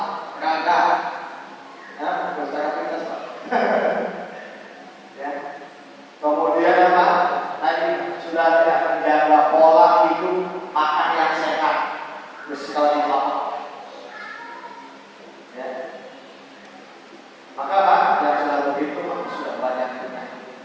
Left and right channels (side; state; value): both; identical; correlation 1.00